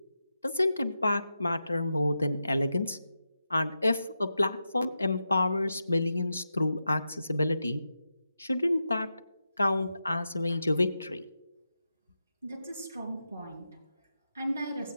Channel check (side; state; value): both; inverted; correlation -0.89